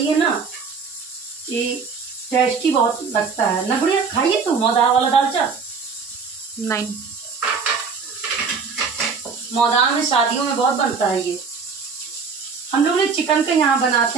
है ना कि टेस्टी बहुत लगता है ना गुड़िया। खाइए तो मौदा वाला दालचा। नहीं, मौदा में शादियों में बहुत बनता है ये। हम लोग ने चिकन का यहाँ बनाते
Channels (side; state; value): left; quieter; 5.3 dB